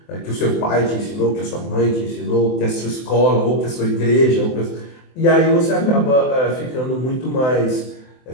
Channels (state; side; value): late; right; 23 ms